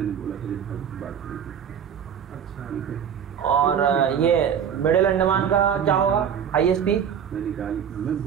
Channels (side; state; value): left; quieter; 8.2 dB